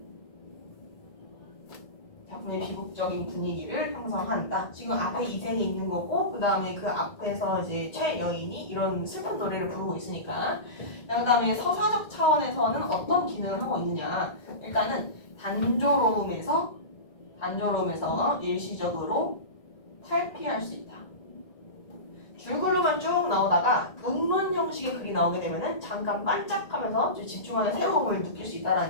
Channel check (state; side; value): late; right; 1.9 ms